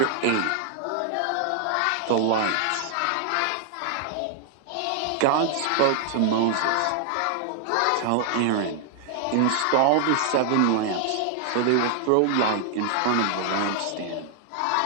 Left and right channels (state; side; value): different; both; correlation 0.00